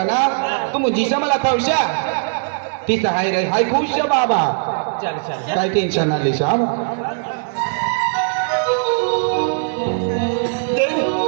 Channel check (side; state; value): left; silent; digital silence